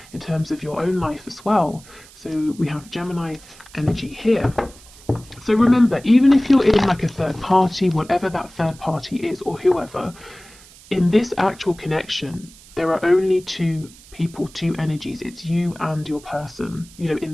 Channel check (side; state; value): right; noise; hiss, 22 dB below the sound